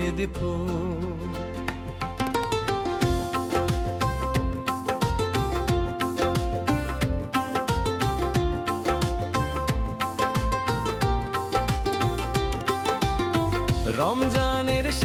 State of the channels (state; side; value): identical; both; correlation 1.00